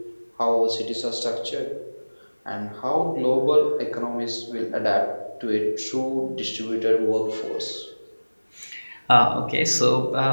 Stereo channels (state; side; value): inverted; both; correlation -1.00